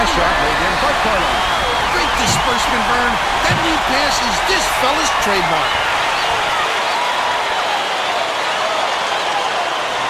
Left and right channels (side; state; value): both; identical; correlation 1.00